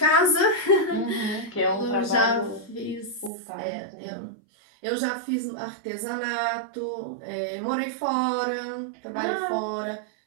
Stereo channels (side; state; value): left; drops out; at 3.3 s